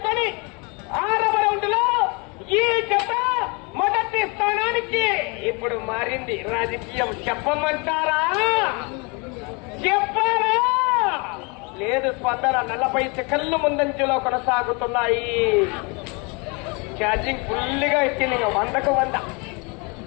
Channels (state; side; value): quieter; right; 30.7 dB